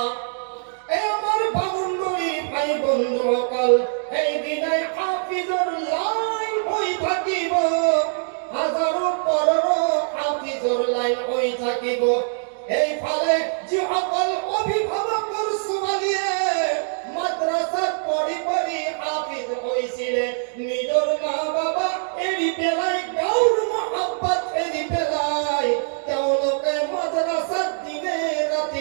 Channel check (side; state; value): left; silent; digital silence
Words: এই আমাৰ বামুণবৰী ভাই বন্ধুসকল এই দিনাই হাফিজৰ লাইন হৈ থাকিব হাজাৰো পৰৰ হাফিজৰ লাইন হৈ থাকিব এইফালে যিসকল অভিভাৱকৰ ছোৱালীয়ে মাদ্ৰাসাত পঢ়ি পঢ়ি হাফিজ হৈছিলে নিজৰ মা বাবা এৰি পেলাই গাঁৱৰ মহব্বত এৰি পেলাই তেওঁলোকে মাদ্ৰাসাত দিনে